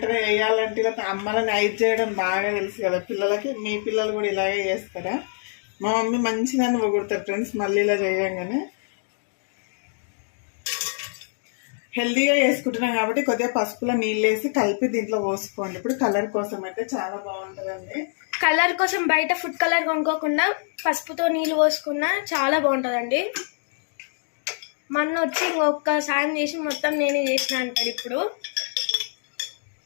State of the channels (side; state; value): right; silent; 62 dB below the other